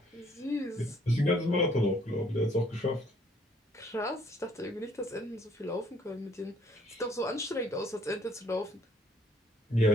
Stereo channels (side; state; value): both; normal; correlation 0.63